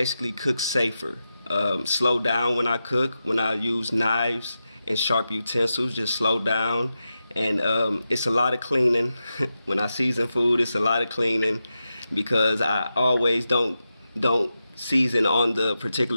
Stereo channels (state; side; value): inverted; both; correlation -0.90